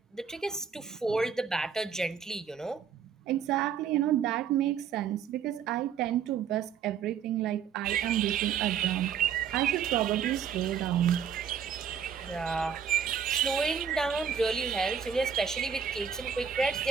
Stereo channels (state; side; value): quieter; left; 7.5 dB